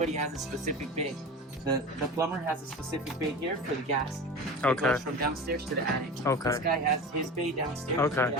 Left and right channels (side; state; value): both; normal; correlation 0.31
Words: has a specific bay. The plumber has a specific bay here for the gas. It Okay. goes from downstairs to the attic. Okay. This guy has his bay downstairs. Okay. He